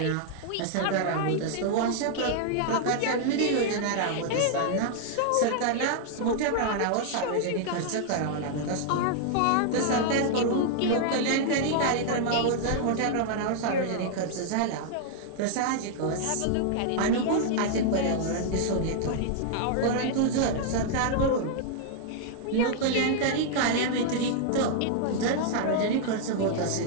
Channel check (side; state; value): both; different; correlation -0.01